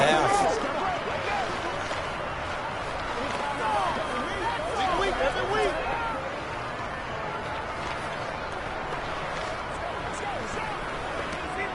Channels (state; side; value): identical; both; correlation 1.00